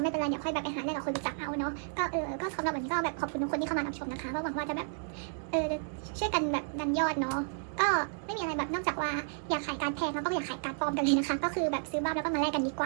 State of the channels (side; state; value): left; silent; digital silence